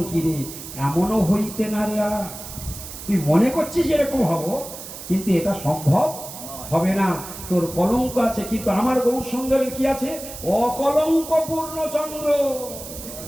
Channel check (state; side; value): noise; right; hiss, 12 dB below the sound